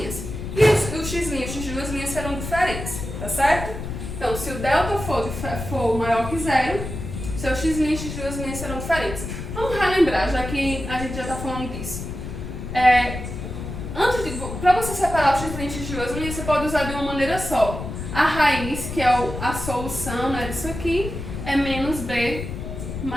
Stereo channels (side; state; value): left; noise; rumble, 7 dB below the sound